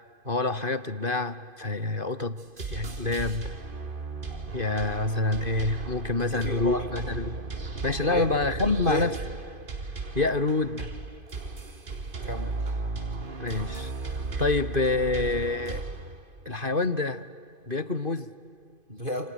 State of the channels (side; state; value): left; late; 2.5 ms